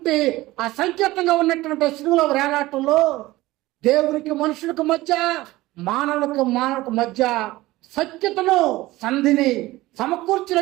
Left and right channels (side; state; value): left; quieter; 18.4 dB